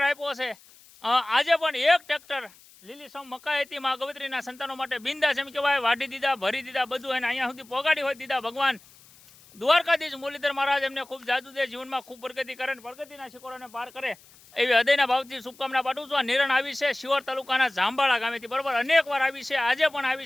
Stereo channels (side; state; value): left; noise; hiss, 25 dB below the sound